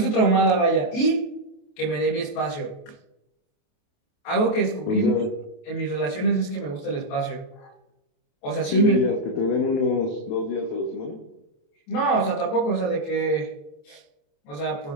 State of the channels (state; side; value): late; right; 28 ms